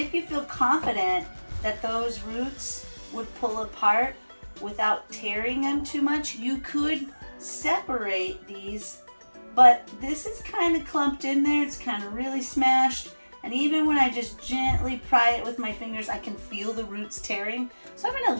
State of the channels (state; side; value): inverted; both; correlation -1.00